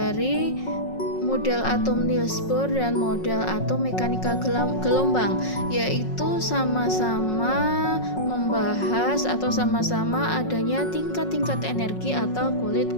model atom Niels Bohr dan model atom mekanika gelombang, yaitu sama-sama membahas atau sama-sama adanya tingkat-tingkat energi atau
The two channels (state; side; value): late; right; 5.5 ms